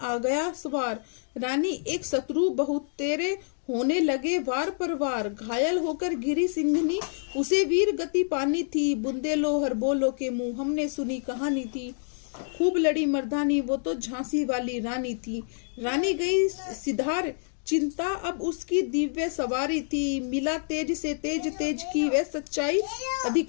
गया सवार, रानी एक शत्रु बहुत तेरे होने लगे वार पर वार। घायल होकर गिरी सिंघनी, उसे वीर गति पानी थी, बुंदेलो हर बोलो के मुंह हमने सुनी कहानी थी, खूब लड़ी मर्दानी वो तो झांसी वाली रानी थी। रानी गई सिधार, चिंता अब उसकी दिव्य सवारी थी, मिला तेज से तेज की वह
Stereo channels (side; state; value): right; silent; digital silence